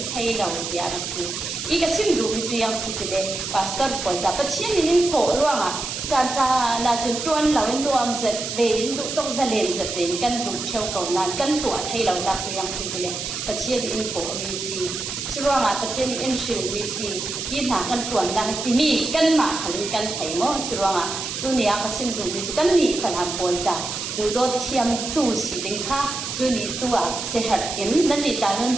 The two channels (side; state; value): right; noise; hiss, 5 dB below the sound